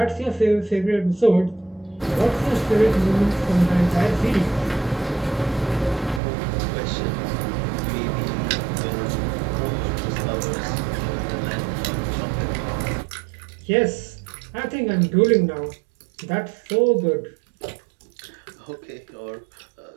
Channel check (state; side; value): drops out; left; at 6.2 s